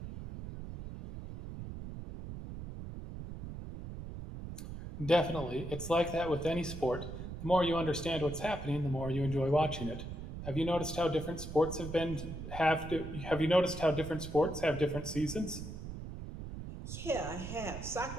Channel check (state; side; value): noise; right; rumble, 9 dB below the sound